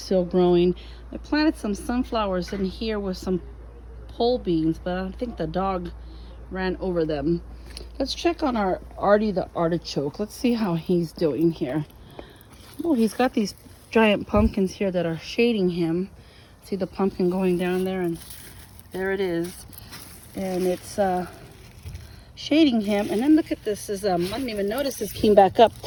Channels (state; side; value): identical; both; correlation 1.00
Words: still growing. I planted some sunflowers in here with some pole beans, but I think the dog ran over them. Let's check on our Artie the artichoke. Let's see how he's doing here. Oh, he's got these giant pumpkins here that are shading him. See the pumpkin going down there, and there it is. And it's shading him. And then look at this. I didn't even notice this came back up.